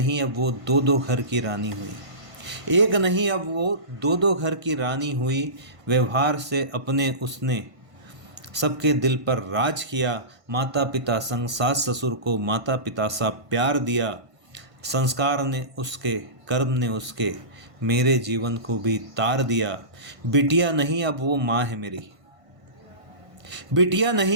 अब वो दो घर की रानी हुई। व्यवहार से अपने उसने सबके दिल पर राज किया। माता पिता संग सास ससुर को माता पिता सा प्यार दिया। संस्कार ने उसके, कर्म ने उसके, मेरे जीवन को भी तार दिया। बिटिया नहीं अब वो माँ है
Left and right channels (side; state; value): left; late; 1.5 ms